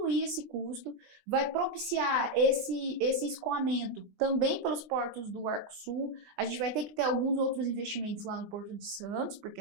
esse custo, vai propiciar esse escoamento também pelos portos do Arco Sul. A gente vai ter que ter alguns outros investimentos lá no Porto de Santos, porque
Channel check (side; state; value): left; late; 16 ms